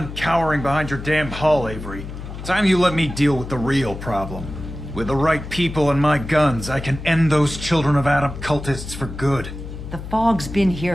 cowering behind your damn hull, Avery. Time you let me deal with the real problem. With the right people and my guns, I can end those Children of Adam cultists for good. The fog's been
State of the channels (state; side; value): noise; left; hum, 10 dB below the sound